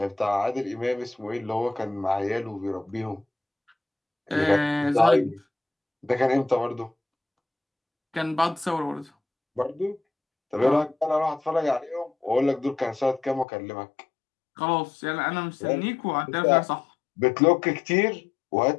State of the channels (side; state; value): right; drops out; at 13.5 s